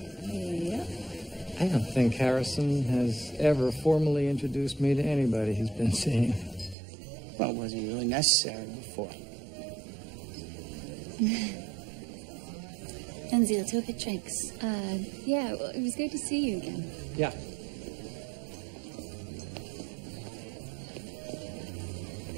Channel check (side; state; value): left; drops out; at 6.8 s